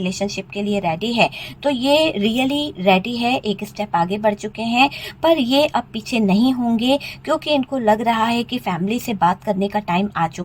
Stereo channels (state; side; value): identical; both; correlation 1.00